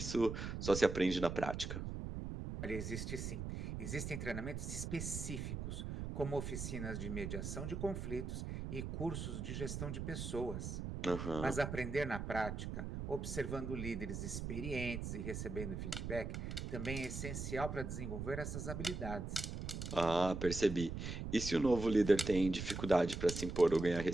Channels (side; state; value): right; noise; rumble, 5 dB below the sound